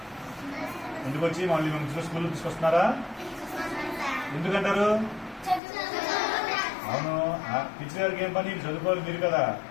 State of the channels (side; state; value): right; drops out; at 5.6 s